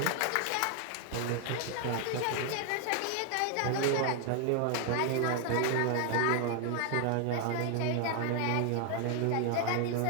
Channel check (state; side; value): different; both; correlation 0.00